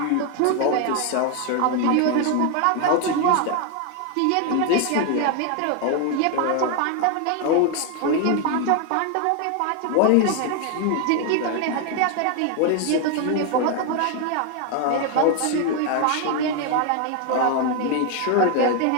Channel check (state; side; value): different; both; correlation 0.01